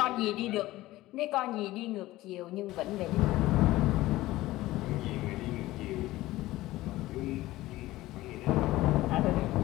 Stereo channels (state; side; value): quieter; right; 17.3 dB